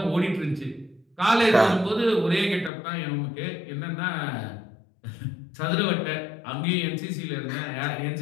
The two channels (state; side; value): drops out; right; at 2.7 s